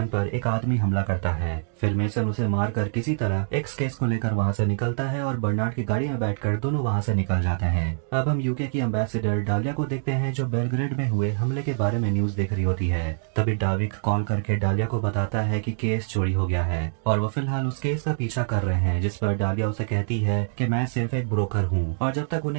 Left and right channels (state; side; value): silent; left; digital silence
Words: पर एक आदमी हमला करता है। फिर मेसन उसे मारकर किसी तरह एक्स केस को लेकर वहाँ से निकलता है और बर्नार्ड की गाड़ी में बैठकर दोनों वहाँ से निकल जाते हैं। अब हम यूके की एम्बेसडर डालिया को देखते हैं जो बेलग्रेड में हुए हमले के बारे में न्यूज देख रही होती है। तभी डाविक कॉल करके डालिया को बताता है कि केस चोरी हो गया है और वो फिलहाल उस केस का पीछा कर रहे हैं, जिस पर डालिया उसे कहती है कि मैं सिर्फ एक ब्रोकर हूँ और जब तक